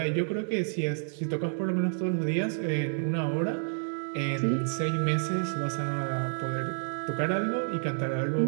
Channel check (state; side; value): silent; left; 58 dB below the other